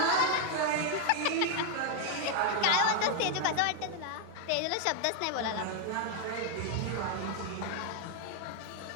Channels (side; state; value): both; different; correlation 0.00